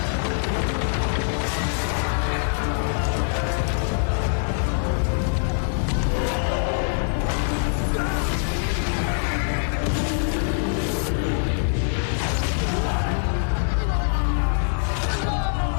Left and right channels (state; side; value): silent; right; digital silence